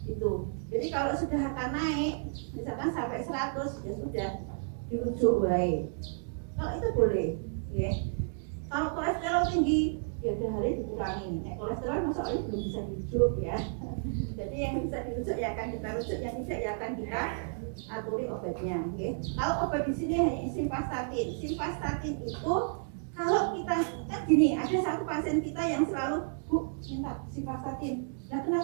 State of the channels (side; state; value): left; silent; digital silence